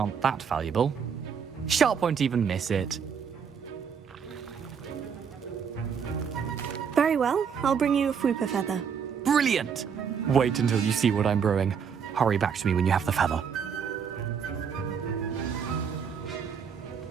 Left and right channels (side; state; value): left; quieter; 6.9 dB